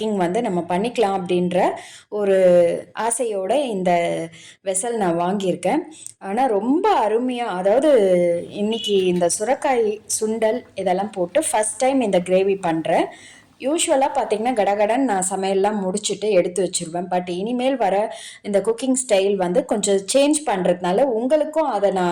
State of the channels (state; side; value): identical; both; correlation 1.00